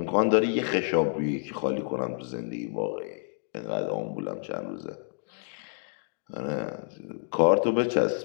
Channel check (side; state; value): right; silent; digital silence